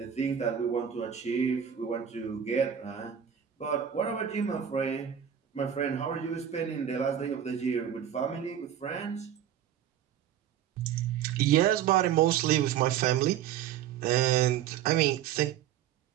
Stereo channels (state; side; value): quieter; left; 9.6 dB